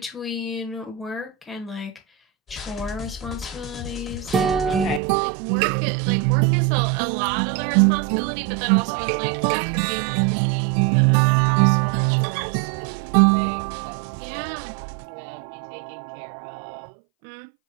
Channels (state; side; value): drops out; left; at 5.0 s